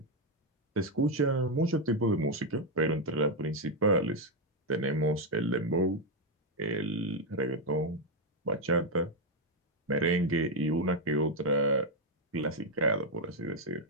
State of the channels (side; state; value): both; normal; correlation 0.03